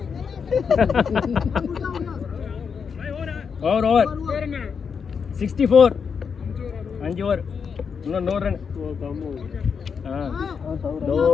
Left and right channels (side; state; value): right; quieter; 6.2 dB